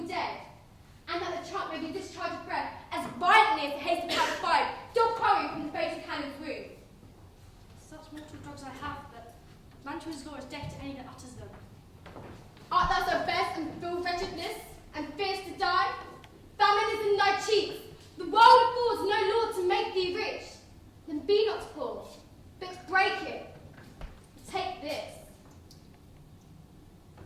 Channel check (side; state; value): both; identical; correlation 1.00